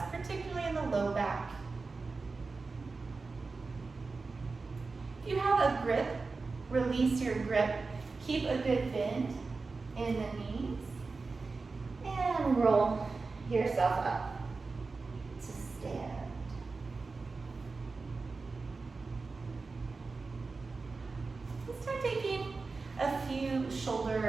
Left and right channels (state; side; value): quieter; left; 4.1 dB